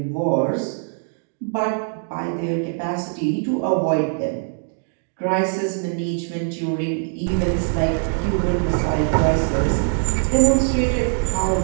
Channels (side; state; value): left; silent; 59 dB below the other